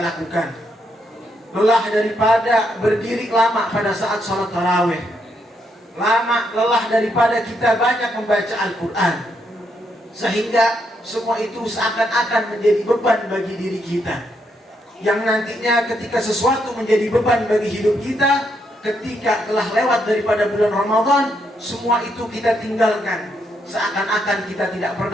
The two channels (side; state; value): both; normal; correlation 0.77